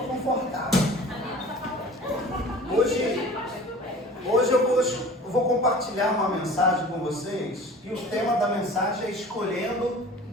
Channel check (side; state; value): both; normal; correlation 0.42